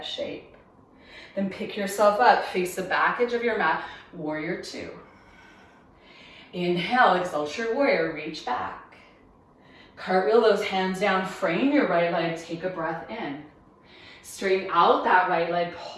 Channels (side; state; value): both; identical; correlation 1.00